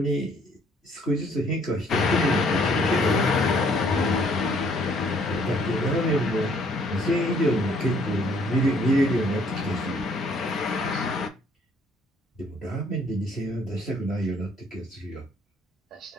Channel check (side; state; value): both; normal; correlation 0.63